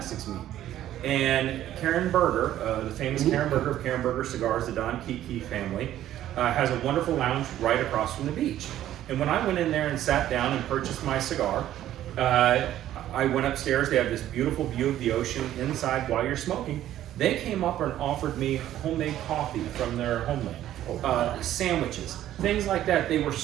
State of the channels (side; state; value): left; quieter; 12.6 dB